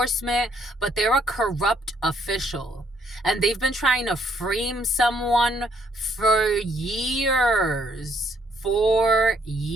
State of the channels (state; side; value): normal; both; correlation 0.69